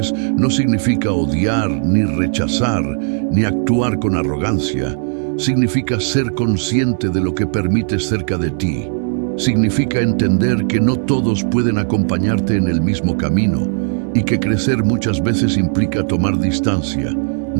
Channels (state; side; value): silent; left; 61 dB below the other